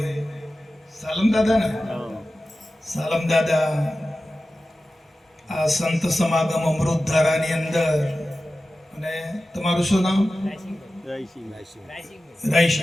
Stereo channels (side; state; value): both; normal; correlation 0.94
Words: સાલમ દાદા ને, સાલમ દાદા આ સંત સમાગમ અમૃતધારાની અંદર, અને તમારું શું નામ?